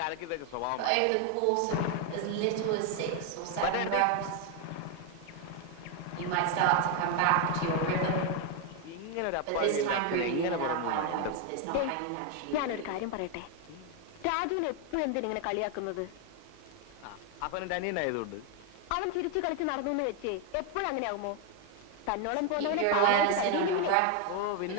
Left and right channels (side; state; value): both; different; correlation 0.01